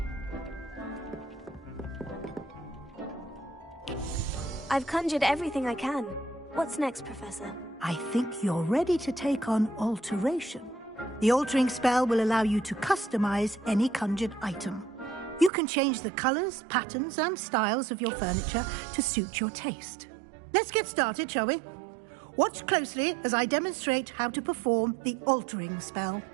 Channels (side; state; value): left; drops out; at 15.5 s